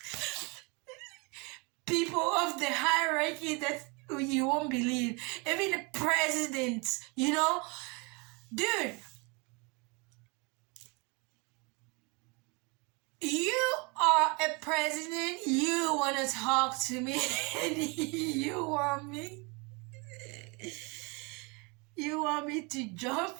People of the hierarchy that you won't believe. Even the presidents, you know? Dude, you are a president, you want to talk to me, and you want me to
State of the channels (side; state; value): left; quieter; 30.0 dB